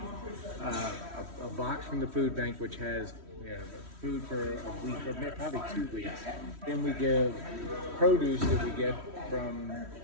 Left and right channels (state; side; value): late; left; 3.1 ms